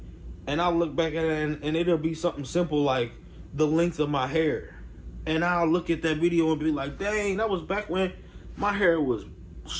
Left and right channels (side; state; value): both; identical; correlation 1.00